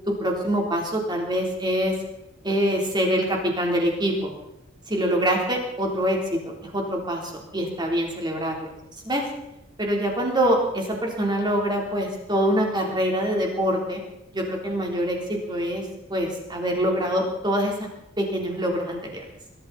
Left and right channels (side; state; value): both; normal; correlation 0.52